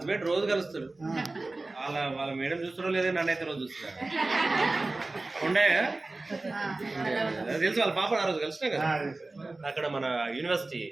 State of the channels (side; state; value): left; quieter; 3.2 dB